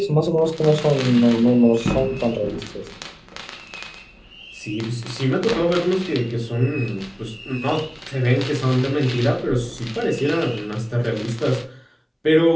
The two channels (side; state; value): both; identical; correlation 1.00